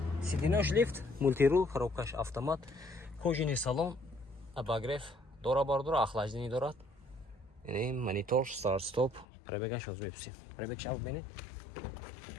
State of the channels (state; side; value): drops out; right; at 9.2 s